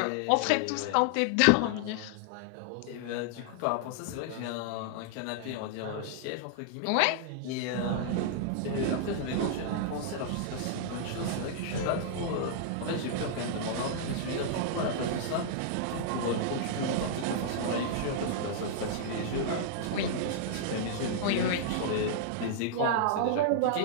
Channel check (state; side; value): different; both; correlation -0.01